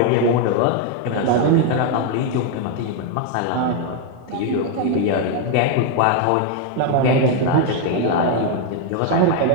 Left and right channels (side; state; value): both; different; correlation 0.01